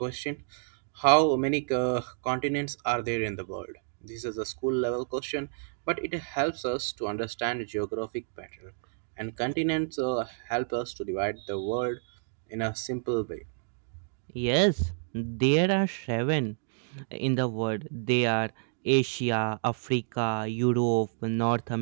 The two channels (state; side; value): silent; left; digital silence